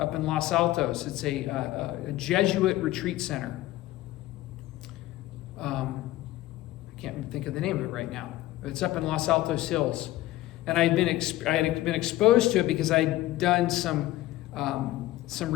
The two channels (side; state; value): right; quieter; 16.0 dB